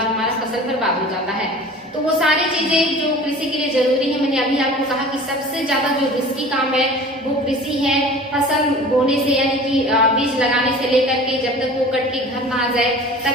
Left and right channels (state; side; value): normal; both; correlation 0.41